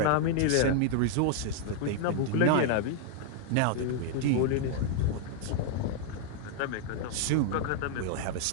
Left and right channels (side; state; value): both; different; correlation 0.00